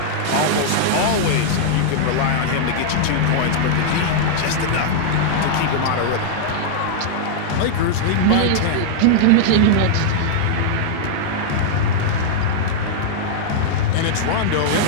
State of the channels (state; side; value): different; both; correlation -0.02